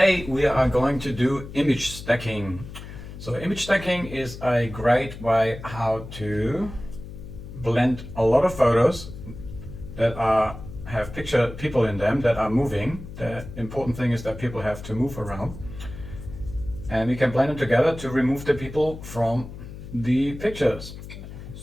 we are going to do image stacking. So image stacking is a great way how to blend a lot of photos that have people in them that are moving. The important thing is that people have to move around. And we can blend them together to remove the people from the pictures.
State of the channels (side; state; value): left; noise; hum, 12 dB below the sound